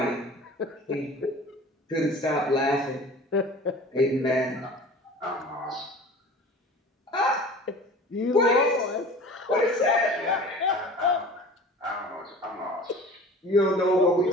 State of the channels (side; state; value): both; normal; correlation 0.42